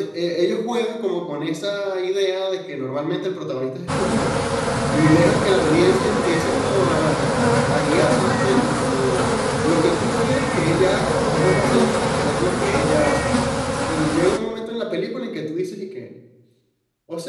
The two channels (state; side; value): identical; both; correlation 1.00